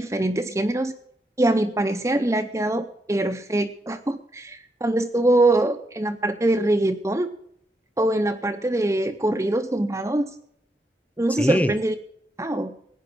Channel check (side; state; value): both; normal; correlation 0.80